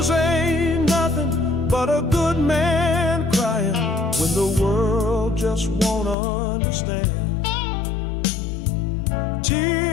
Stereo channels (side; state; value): right; drops out; at 6.2 s